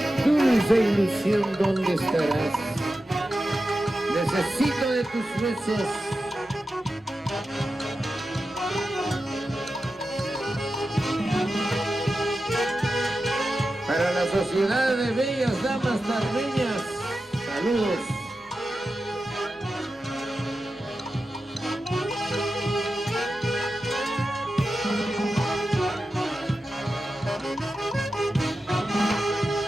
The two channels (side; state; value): both; normal; correlation 0.92